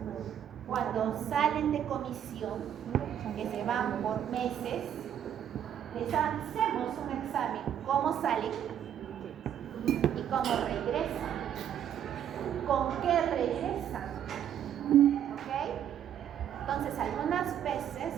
cuando salen de comisión, que se van por meses, les hacemos un examen, cómo salen y cómo regresan, con qué regresan, ¿ok? Entonces algunas veces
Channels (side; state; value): left; quieter; 9.8 dB